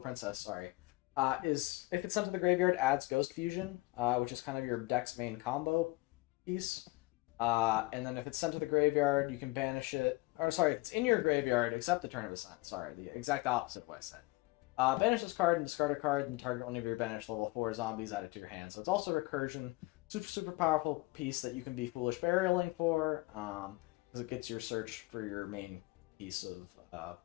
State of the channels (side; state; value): right; quieter; 21.7 dB